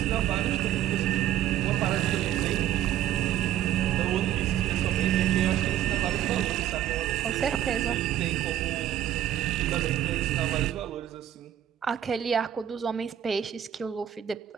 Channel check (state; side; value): quieter; left; 11.3 dB